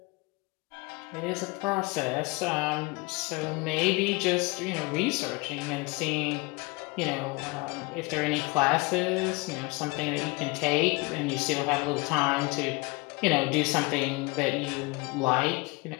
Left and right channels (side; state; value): right; quieter; 25.4 dB